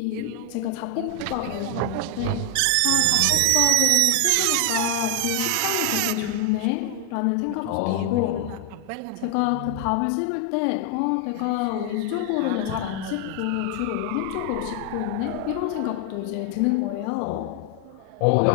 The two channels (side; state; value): both; different; correlation 0.00